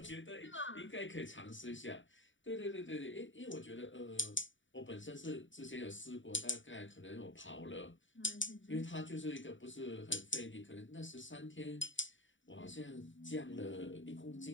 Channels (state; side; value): late; right; 0.55 ms